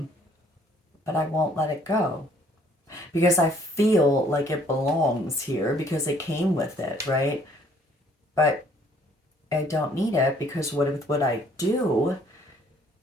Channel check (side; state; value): both; normal; correlation 0.62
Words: I won't let it go because I feel like it belongs here because it came with it, right? But I don't need it because what I do,